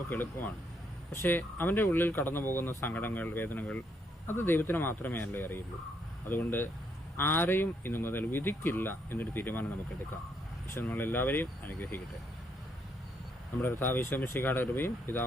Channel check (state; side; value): normal; both; correlation 0.74